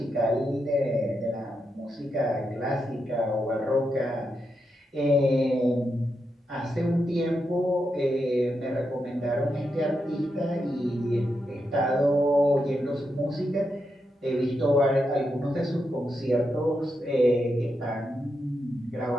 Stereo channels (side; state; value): both; normal; correlation 0.85